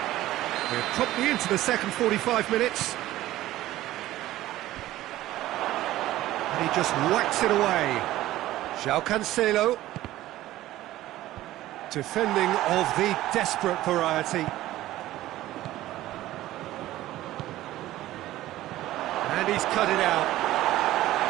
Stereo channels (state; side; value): quieter; left; 15.3 dB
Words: We're promptly into the second 45 minutes. And he just whacks it away. João Cancelo. Defending of the desperate variety. And he's cut it out.